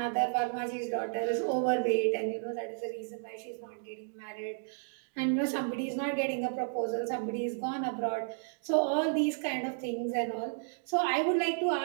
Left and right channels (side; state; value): left; silent; digital silence